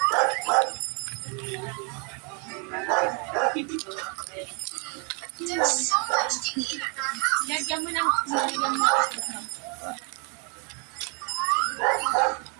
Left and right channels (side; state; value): left; quieter; 35.5 dB